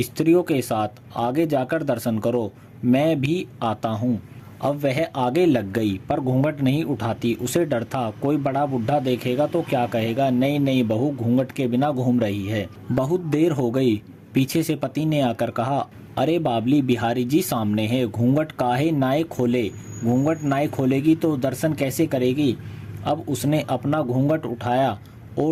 के साथ आगे जाकर दर्शन करो, मैं भी आता हूँ। अब वह आगे लग गई, पर घूंघट नहीं उठाती। उसे डर था, कोई बड़ा बुढ़ा देखेगा तो क्या कहेगा, नई नई बहू घूंघट के बिना घूम रही है। बहुत देर हो गई। पीछे से पति ने आकर कहा, अरे बाबली, बिहारी जी सामने है, घूंघट काहे नाए खोले? घूंघट नाए खोलेगी तो दर्शन कैसे करेगी? अब उसने अपना घूंघट उठाया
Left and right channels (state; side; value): identical; both; correlation 1.00